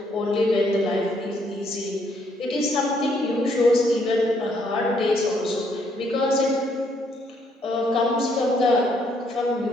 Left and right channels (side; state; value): both; normal; correlation 0.70